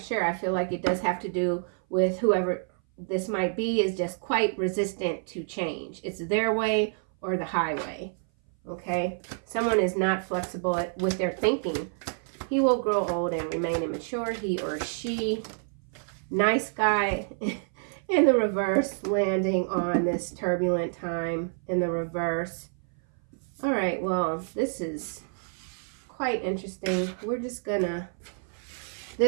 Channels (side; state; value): left; silent; 57 dB below the other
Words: sure. I feel like it does have to do with whoever this might be is just quite resistant to change. It's their way or the highway, okay? Someone is not flexible with their thinking. He will grow old and remain immature, he or she. Nice guy in the reverse, landing on this turbulent time in the reverse. All right, well, this is quite interesting. We're just gonna,